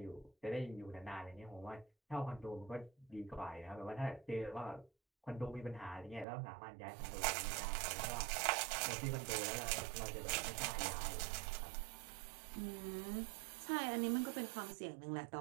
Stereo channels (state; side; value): drops out; left; at 6.2 s